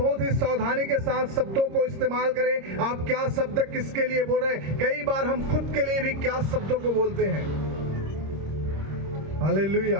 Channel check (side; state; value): left; late; 26 ms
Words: ही सावधानी के साथ शब्दों को इस्तेमाल करें। आप क्या शब्द किसके लिए बोल रहे हैं। कई बार हम खुद के लिए भी क्या शब्दों को बोलते हैं। हालेलुया।